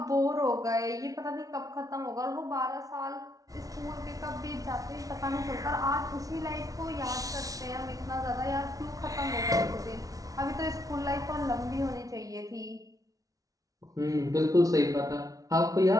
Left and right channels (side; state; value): left; late; 0.18 ms